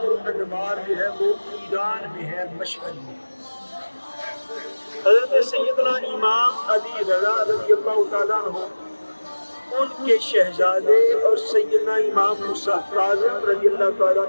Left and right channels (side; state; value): both; inverted; correlation -1.00